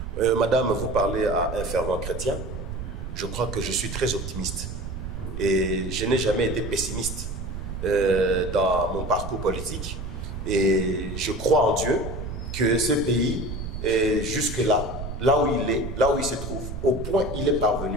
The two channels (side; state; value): right; noise; rumble, 7 dB below the sound